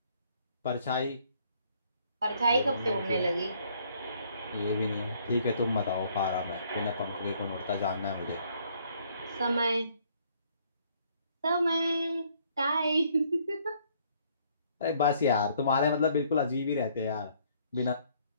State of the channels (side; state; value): both; inverted; correlation -0.65